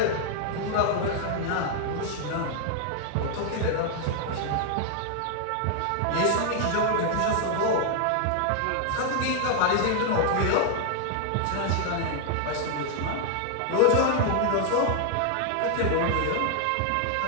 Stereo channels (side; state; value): both; different; correlation 0.00